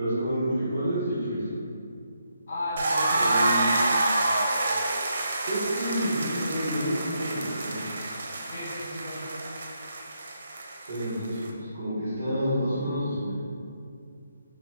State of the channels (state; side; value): inverted; both; correlation -0.79